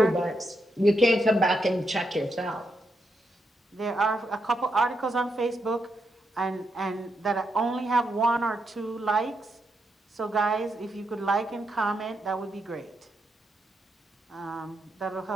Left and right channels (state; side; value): normal; both; correlation 0.82